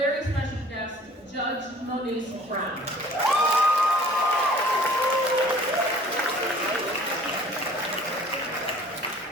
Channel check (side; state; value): both; normal; correlation 0.51